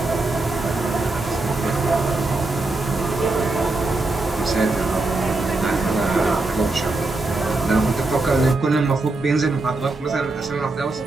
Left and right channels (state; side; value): quieter; left; 3.1 dB